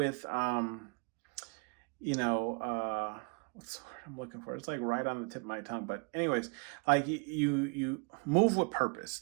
what's the word I'm looking for? It's like right on the tip of my tongue. But anyways, like you move with purpose.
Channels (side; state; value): left; quieter; 33.8 dB